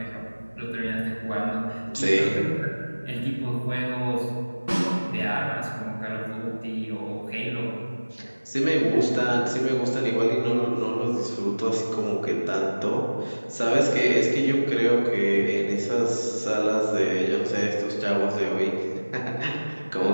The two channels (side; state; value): both; inverted; correlation -1.00